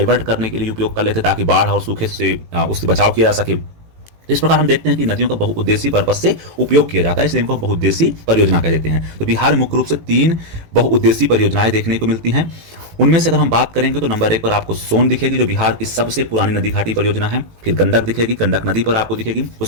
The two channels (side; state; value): left; late; 18 ms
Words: करने के लिए उपयोग कर लेते हैं ताकि बाढ़ और सूखे से उससे बचाव किया जा सके। इस प्रकार हम देखते हैं कि नदियों का बहुउद्देशीय पर्पज से उपयोग किया जाता है, इसलिए इनको बहुउद्देशीय परियोजना कह देते हैं। तो बिहार में मुख्य रूप से 3 बहुउद्देशीय परियोजनाएं देखने को मिलती हैं। उनमें से अगर हम बात करेंगे तो नंबर 1 पर आपको सोन दिखेगी, जो बिहार की सबसे पुरानी नदी घाटी परियोजना है। फिर गंडक दिखेगी, गंडक नदी पर आपको दिखेगी।